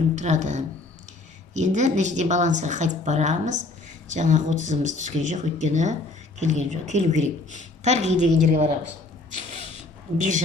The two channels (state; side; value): quieter; right; 3.3 dB